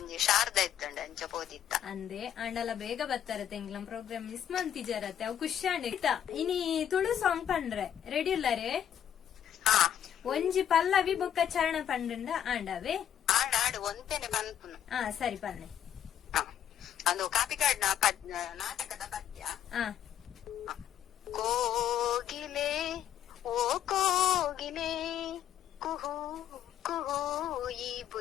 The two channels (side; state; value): right; quieter; 10.0 dB